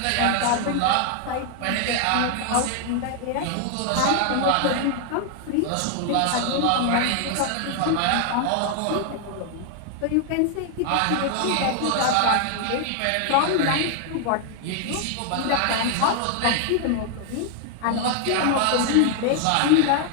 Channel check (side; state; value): both; different; correlation 0.00